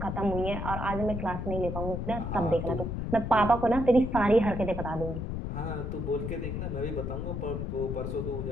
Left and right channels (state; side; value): noise; left; rumble, 4 dB below the sound